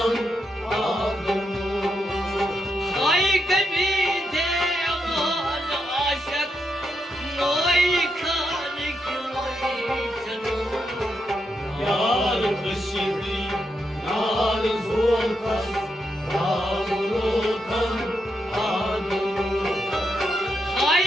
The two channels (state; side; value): normal; both; correlation 0.82